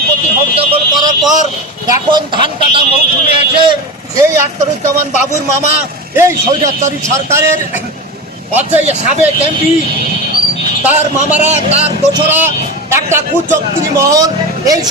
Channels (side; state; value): both; normal; correlation 0.23